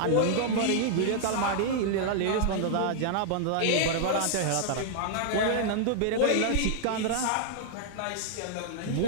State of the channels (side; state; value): both; different; correlation -0.01